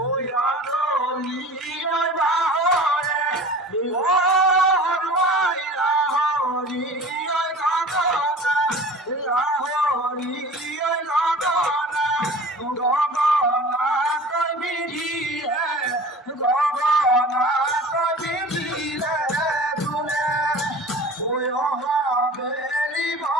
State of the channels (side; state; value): both; normal; correlation 0.40